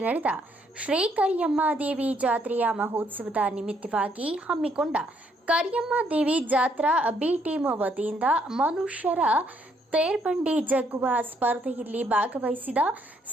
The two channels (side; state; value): both; normal; correlation 0.71